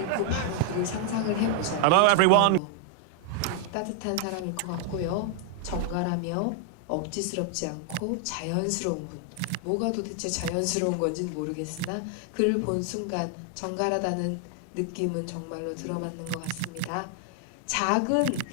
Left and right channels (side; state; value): both; different; correlation 0.00